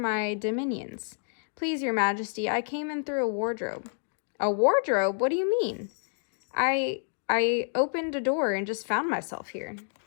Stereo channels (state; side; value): silent; right; digital silence